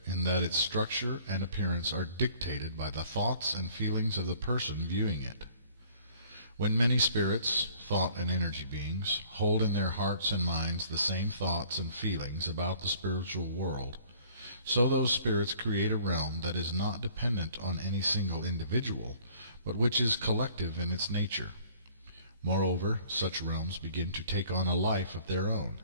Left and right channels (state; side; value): inverted; both; correlation -0.55